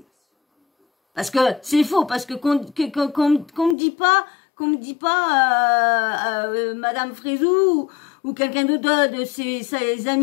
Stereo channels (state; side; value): drops out; right; at 3.8 s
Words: parce que c'est faux, parce que qu'on me dit pas, Madame Frézou ou quelqu'un d'autre de ses